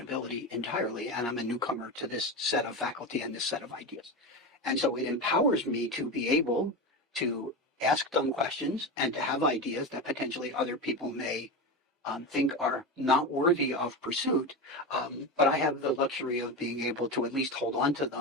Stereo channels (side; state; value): both; normal; correlation 0.20